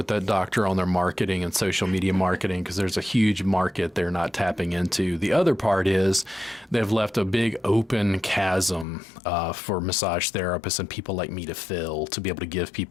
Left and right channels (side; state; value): right; drops out; at 8.8 s